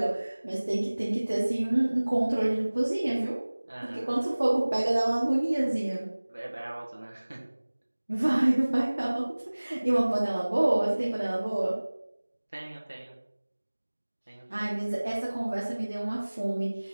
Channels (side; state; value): both; inverted; correlation -1.00